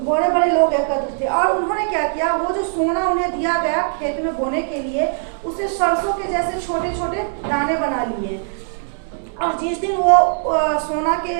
थे। और उन्होंने क्या किया, वो जो सोना उन्हें दिया गया खेत में बोने के लिए, उसे सरसों के जैसे छोटे छोटे दाने बना लिए। और जिस दिन वो सोना के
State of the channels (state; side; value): silent; left; digital silence